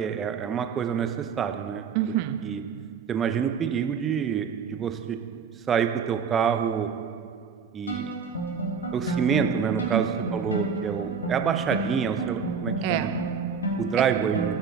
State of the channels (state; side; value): quieter; left; 6.4 dB